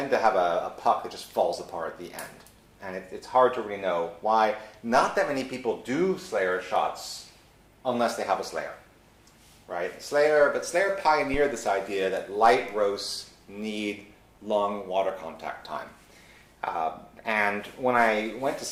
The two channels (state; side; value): identical; both; correlation 1.00